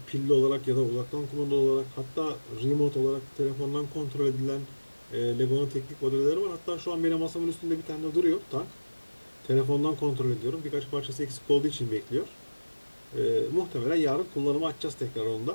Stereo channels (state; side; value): inverted; both; correlation -1.00